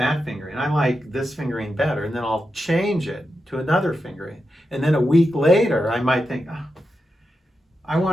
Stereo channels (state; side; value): normal; both; correlation 0.88